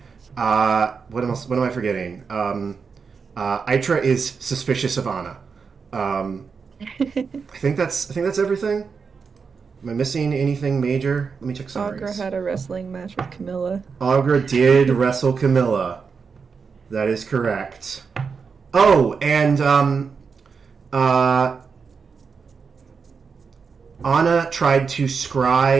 What am I forgetting? Itra is suspicious of Anna. I think that's everything. Am I missing anything major? Let me check summaries. Augur had a wrestling match with Camilla. Augur did wrestle Camilla. That is correct. Oh, and Anna tried to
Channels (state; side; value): quieter; left; 5.5 dB